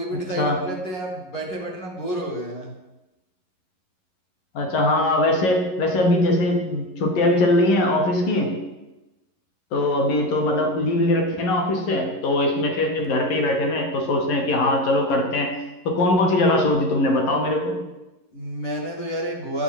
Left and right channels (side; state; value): right; late; 11 ms